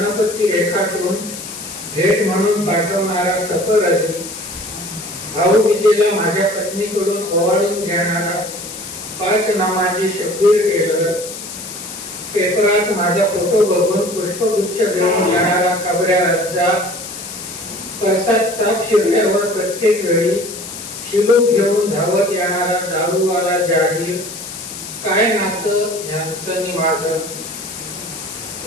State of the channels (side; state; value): left; noise; hiss, 10 dB below the sound